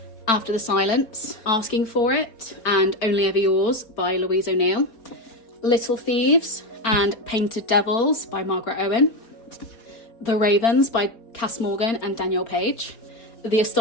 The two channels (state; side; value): late; right; 4.4 ms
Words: After the Silence, Asking for It, and Only Ever Yours by Louise O'Neill. Little Thieves and Painted Devils by Margaret Owen. The Ravens by Cass Morgan and Danielle Page. The